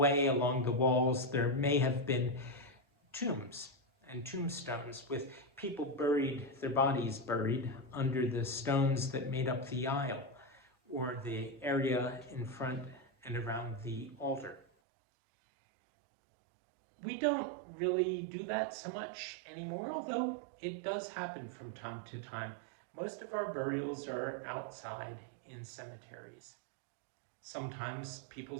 along the walls, there may have been tombs and tombstones with people buried, their bodies buried under the stones that made up the aisle or the area in front and around the altar. We don't really do that so much anymore, although it does happen from time to time. Most of our burials are outside in cemeteries. Sometimes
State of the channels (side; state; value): left; drops out; at 14.7 s